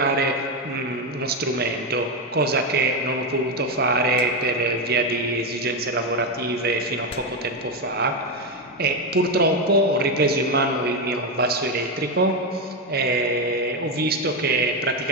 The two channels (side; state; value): both; normal; correlation 0.09